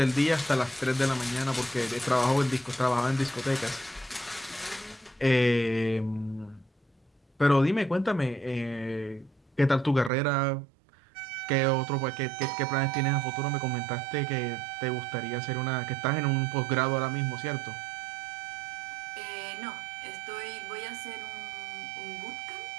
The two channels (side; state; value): left; drops out; at 10.1 s